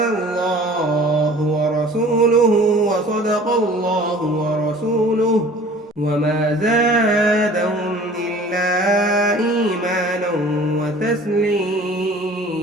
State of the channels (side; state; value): both; normal; correlation 0.47